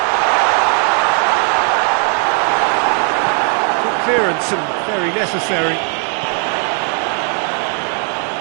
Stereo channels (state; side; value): quieter; left; 36.9 dB